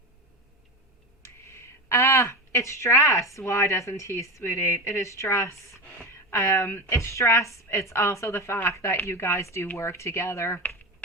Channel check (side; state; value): both; normal; correlation 0.21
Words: It's stress. Why doesn't he, sweetie? It is stress. It's stress. It's also the fact that you guys do work together.